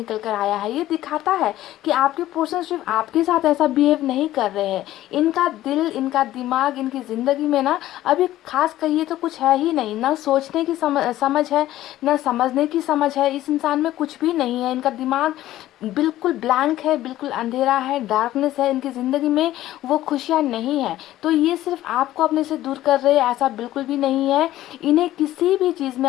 कर आया है। ये दिखाता है कि आपके पर्सन सिर्फ आपके साथ ऐसा बिहेव नहीं कर रहे हैं। इनका दिल, इनका दिमाग, इनकी ज़िंदगी में ना अभी खास कहिए तो कुछ है ही नहीं। ना सोचने की समझ है, ना समझने की समझ है। इस इंसान में कुछ भी नहीं है। इनका दिमाग बिल्कुल ब्लैंक है, बिल्कुल अंधेरा है, डार्कनेस है इनकी ज़िंदगी में। वो खुशियाँ नहीं है। तो ये सिर्फ आपको अपने से दूर कर रहे हैं, ऐसा बिल्कुल भी नहीं है। इन्हें किसी भी चीज़ में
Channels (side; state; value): right; quieter; 14.4 dB